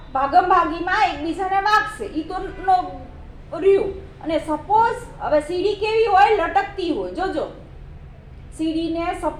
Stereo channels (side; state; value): both; identical; correlation 1.00